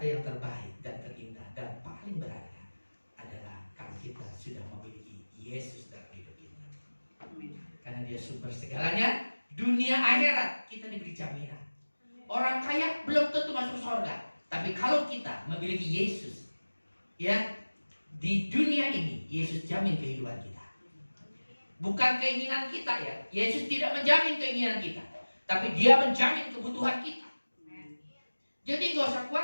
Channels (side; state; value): both; inverted; correlation -1.00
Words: yang terbaik dan terindah dan paling berharga adalah kalau kita sudah memiliki Yesus dalam hidup kita. Karena dia sumber segalanya. Dunia akhirat kita diberi jaminan. Orang kaya belum tentu masuk surga. Tapi kalau kita memiliki Yesus, ya, di dunia ini Yesus jamin kehidupan kita. Bukan keinginan kita ya. Yesus tidak menjamin keinginan kita, tapi dia menjamin kebutuhan kita. Jadi gak usah